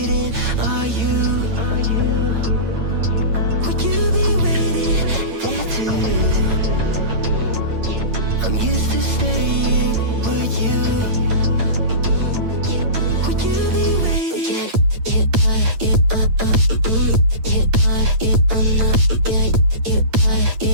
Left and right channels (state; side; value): late; left; 8.9 ms